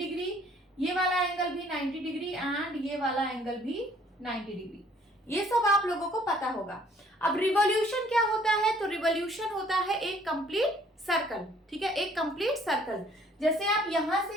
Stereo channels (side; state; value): both; normal; correlation 0.60